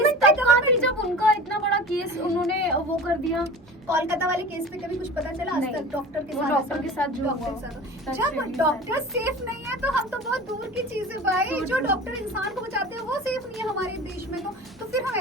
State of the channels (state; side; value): noise; right; hum, 28 dB below the sound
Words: तब कहाँ थी जब उनका इतना बड़ा केस उन्होंने वो कर दिया? कोलकाता वाले केस पे कभी कुछ पता चला? आज तक डॉक्टर के साथ जब डॉक्टर सेफ नहीं है तो हम तो बहुत दूर की चीज है भाई। जो डॉक्टर इंसान को बचाते हैं वो सेफ नहीं है हमारे देश में, तो फिर हम